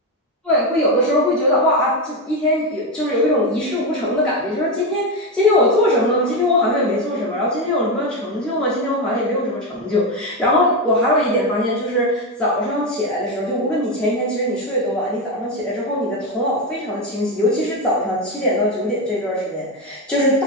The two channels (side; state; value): both; normal; correlation 0.12